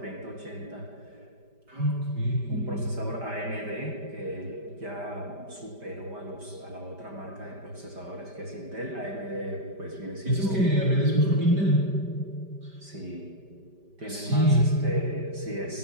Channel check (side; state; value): left; late; 5.1 ms